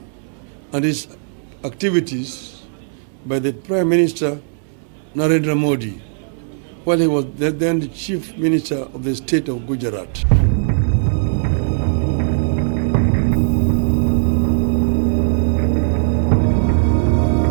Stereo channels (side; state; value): left; silent; digital silence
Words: and its activities by the Prime Minister Narendra Modi, while he was then the Chief Minister of the state of Gujarat.